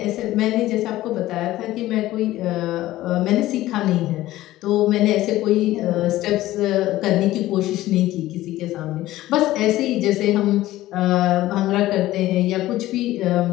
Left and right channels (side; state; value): right; quieter; 15.8 dB